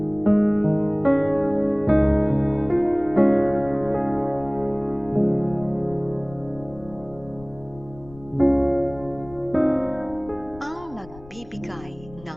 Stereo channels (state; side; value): noise; left; rumble, 20 dB below the sound